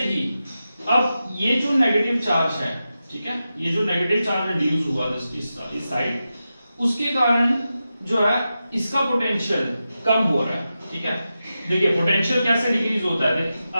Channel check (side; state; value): both; inverted; correlation -0.91